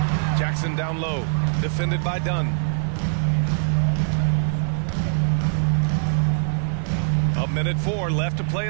Jackson down low. Defended by Dunn. A 1:04 left to play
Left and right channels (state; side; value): silent; left; 57 dB below the other